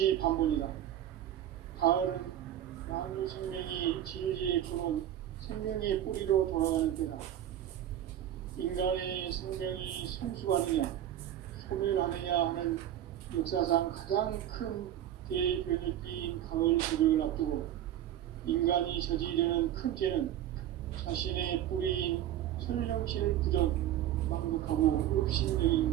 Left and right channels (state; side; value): quieter; left; 11.6 dB